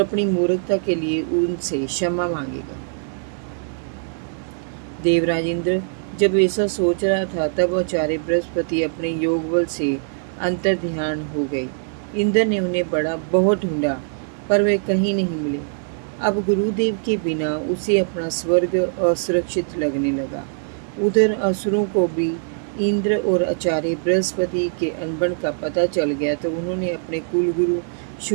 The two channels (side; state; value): left; silent; 64 dB below the other